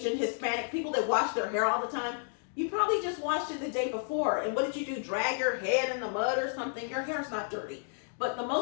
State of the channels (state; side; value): silent; right; 57 dB below the other